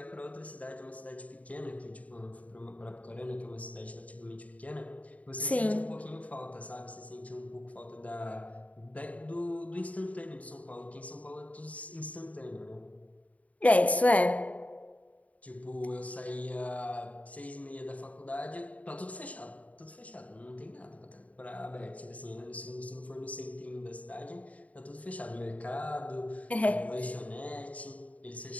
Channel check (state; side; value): late; right; 0.069 ms